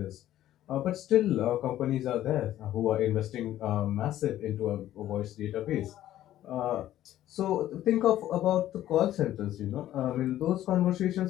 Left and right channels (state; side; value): quieter; right; 13.1 dB